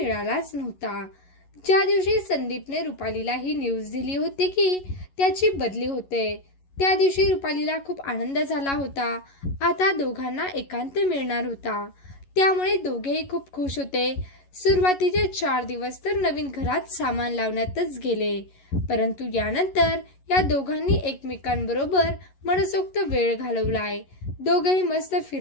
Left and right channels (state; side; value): late; right; 11 ms